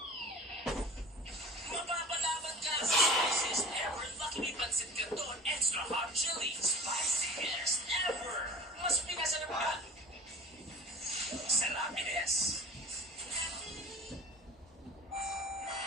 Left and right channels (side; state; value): both; normal; correlation 0.40